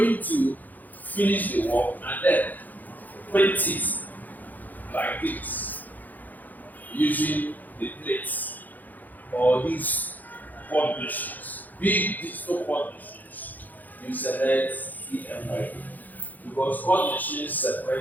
to finish the work and then print it like this using the plates or these quad machines, big digital quad machines, you select CMYK because quad machines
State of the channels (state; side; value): late; right; 0.083 ms